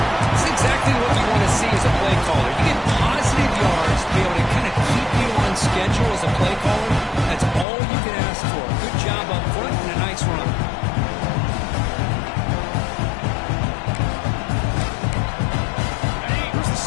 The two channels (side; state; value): right; drops out; at 7.7 s